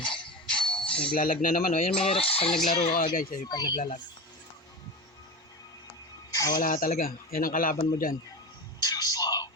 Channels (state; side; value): normal; both; correlation 0.26